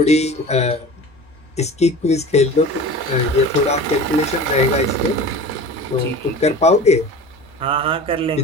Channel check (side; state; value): both; normal; correlation 0.36